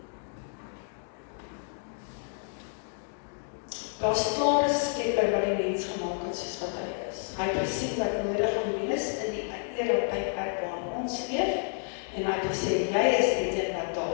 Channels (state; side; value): silent; right; 58 dB below the other